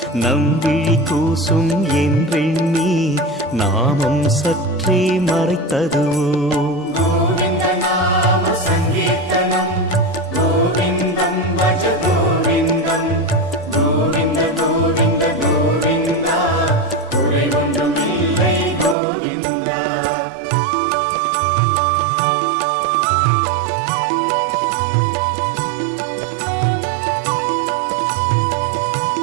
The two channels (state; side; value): drops out; left; at 18.9 s